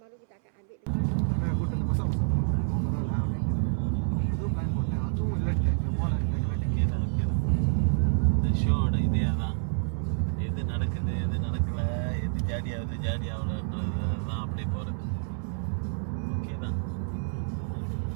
baru kita akan ambil. Aku dah pasal. Itu plan buat. Aku lihat இந்த ஷோட இதே தான். எது நடக்குது, எது நடக்கல, எது ஜாடி ஆகலன்றது தான் அப்படியே போகிறது. ஓகே தான்.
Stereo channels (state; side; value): silent; left; 59 dB below the other